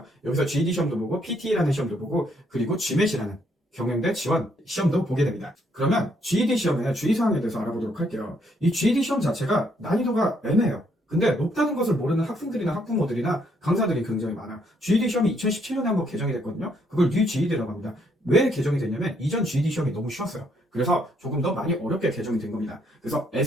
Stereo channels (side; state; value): both; normal; correlation 0.71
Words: 여기서 GED 시험도 보고 PT라는 시험도 보고 그리고 GMAT이라는 경영대 지원 시험도 보게 됩니다. 그러면 GED 시험의 주의사항에 대해서 알아보도록 할게요. 이 GED 시험 자체가 난이도가 애매해요. 근데 높다는 것을 모르는 학생들이나 학부모들이나 강사들이 굉장히 많아요. GED 시험이 2017년에 한번 개정이 됐거든요. 그걸 New GED라고 합니다. 왜 개정이 됐냐면 이전 GED 시험이 너무 쉬웠어요. 그래서 조금 더 많이 어렵게 개정이 된 겁니다. 그래서